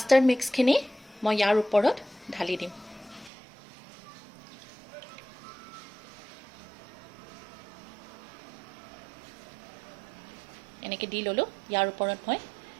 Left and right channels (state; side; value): drops out; left; at 3.3 s